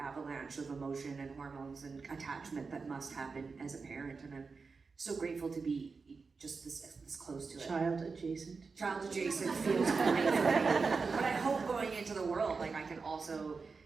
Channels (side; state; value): left; quieter; 4.6 dB